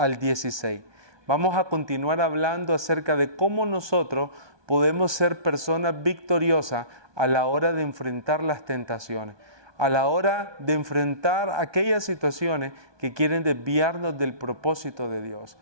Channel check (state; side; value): late; left; 1.2 ms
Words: 16. Vamos a continuar hablando acerca de cómo nosotros podemos ser personas victoriosas a la hora de enfrentar las tentaciones, a la hora de enfrentar aquellas situaciones que quieren desviarnos del propósito de Dios.